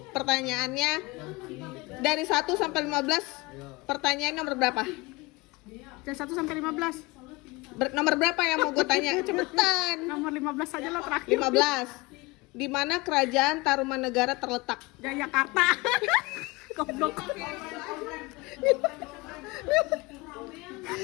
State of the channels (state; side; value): quieter; right; 24.0 dB